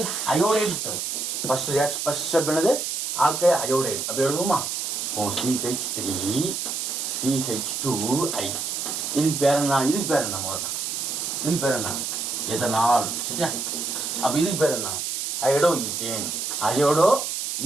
அயோடைடு தரும். ஃபர்ஸ்ட் ஸ்டெப் என்னது? Alkyl iodide. அப்படி எழுதுவோமா? ஓ CH3 CH2I. இதுக்கு பேர் என்ன? இதுக்கு பேர் என்ன? இதுக்கு பேர் என்ன? எதனால். சரியா? அப்போ இதுக்கு பேர் என்ன? Iodo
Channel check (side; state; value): right; noise; hiss, 3 dB below the sound